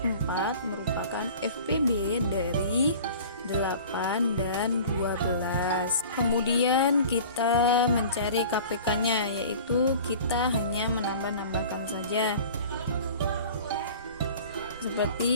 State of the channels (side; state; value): both; inverted; correlation -0.42